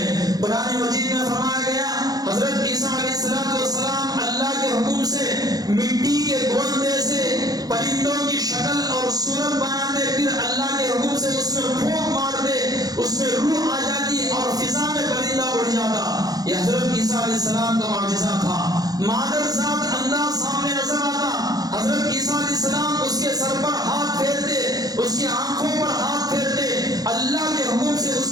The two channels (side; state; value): left; late; 0.18 ms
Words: قرآن مجید میں فرمایا گیا حضرت عیسیٰ علیہ السلام اللہ کے حکم سے مٹی کے گوندے سے پرندوں کی شکل اور صورت بناتے، پھر اللہ کے حکم سے اس میں پھونک مارتے، اس میں روح آ جاتی اور فضا میں پرندہ اڑ جاتا۔ یہ حضرت عیسیٰ علیہ السلام کا معجزہ تھا۔ مادر ذات انداز سامنے نظر آتا، حضرت عیسیٰ علیہ السلام اس کے سر پر ہاتھ پھیرتے، اس کی آنکھوں پر ہاتھ پھیرتے، اللہ کے حکم سے اس